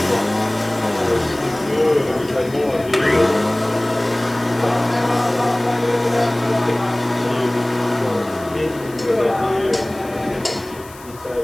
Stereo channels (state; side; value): noise; left; hiss, 21 dB below the sound